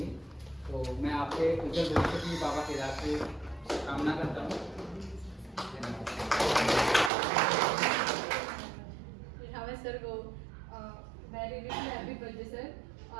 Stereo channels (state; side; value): drops out; left; at 7.1 s